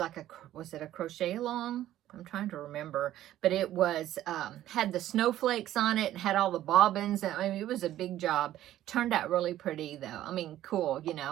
was it a crochet along? I'm trying to remember, but it was had the snowflakes on it and had all the bobbins. I mean, it was a big job. Turned out really pretty though. I mean, cool,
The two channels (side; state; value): left; quieter; 13.2 dB